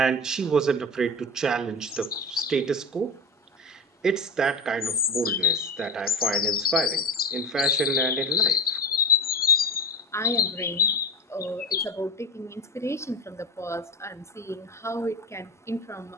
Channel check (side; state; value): both; normal; correlation 0.26